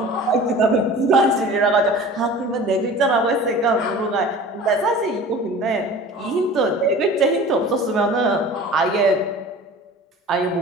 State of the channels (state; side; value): normal; both; correlation 0.41